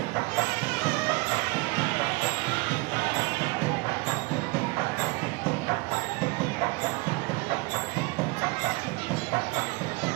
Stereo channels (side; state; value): left; quieter; 25.4 dB